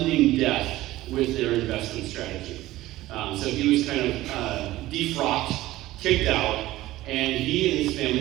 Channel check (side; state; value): left; quieter; 16.5 dB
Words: death with their investment strategy. So he was kind of defrocked, kicked out, and he and his